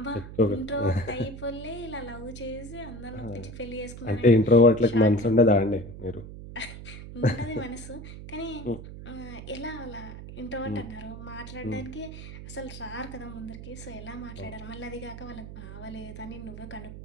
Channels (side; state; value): right; noise; hum, 12 dB below the sound